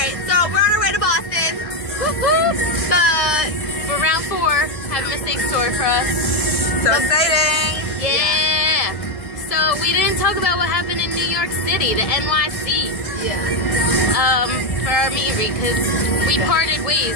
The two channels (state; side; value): late; right; 1.7 ms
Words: so we're on our way to Boston. But we're round 4. Have a mistake store for us. So exciting! Yeah! So we didn't talk about what happened in New York City, the NYC. Yeah. For our meet and greet, because we parted